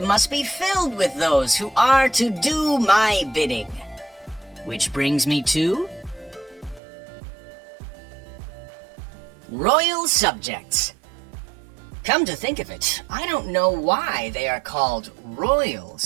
must be filled with those who are to do my bidding. Which brings me to... royal subjects. Come to think of it, I don't know why they are called royal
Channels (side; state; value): left; drops out; at 6.8 s